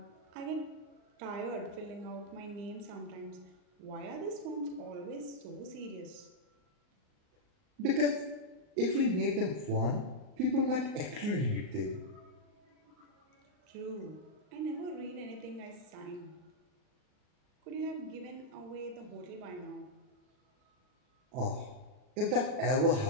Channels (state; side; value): late; left; 39 ms